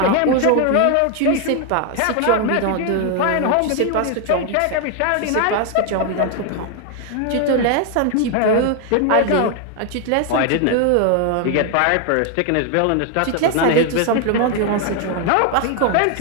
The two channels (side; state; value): both; different; correlation 0.01